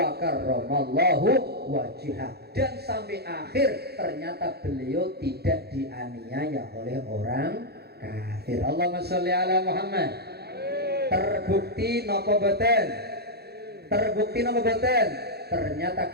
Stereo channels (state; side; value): late; left; 0.47 ms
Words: karramallahu wajhah. Dan sampai akhir ternyata beliau tidak dianiaya oleh orang kafir. Allahumma sholli ala Muhammad. Terbukti napa boten? Terbukti napa boten? Ternyata